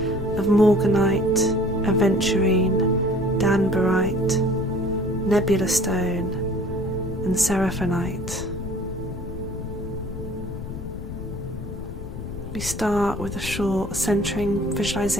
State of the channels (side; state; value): left; noise; rumble, 8 dB below the sound